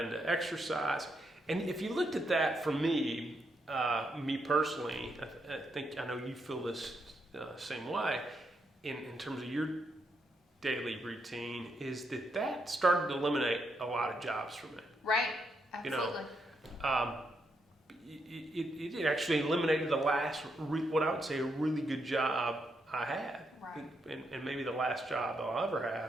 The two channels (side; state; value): both; normal; correlation 0.80